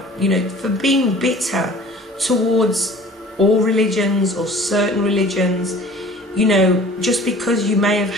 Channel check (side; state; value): both; normal; correlation 0.47